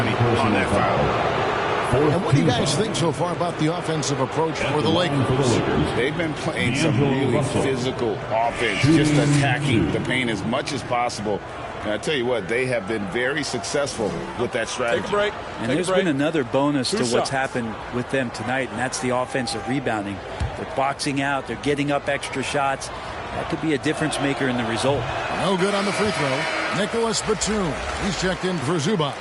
on that foul. And what do you guys think so far about the offensive approach for the Lakers? They've been playing some really physical offense, just attacking the paint as much as possible. And I tell you what, they have been very successful with that strategy. Take a break. And there's been another bonus to what's happened with them tonight, and that's the offensive rebounding. They're boxing out. They're getting up extra shots. That could be a difference maker in the result. No good on the free throw. Nicholas Batum. He's checked in for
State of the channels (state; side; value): identical; both; correlation 1.00